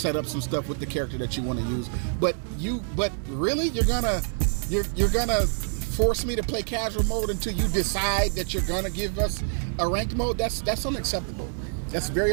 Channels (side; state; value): left; silent; digital silence